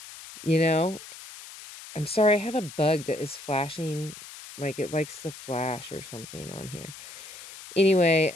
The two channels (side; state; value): left; noise; hiss, 15 dB below the sound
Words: You know? I'm sorry, I have a bug that is flashing, like it likes to flash or something on here. Anyway,